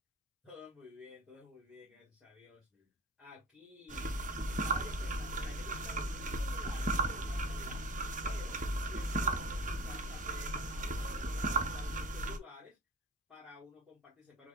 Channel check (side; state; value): both; normal; correlation 0.35